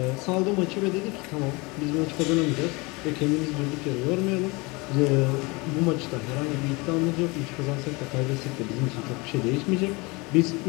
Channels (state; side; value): quieter; right; 26.0 dB